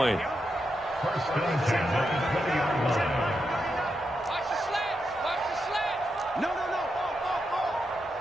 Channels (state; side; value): normal; both; correlation 0.85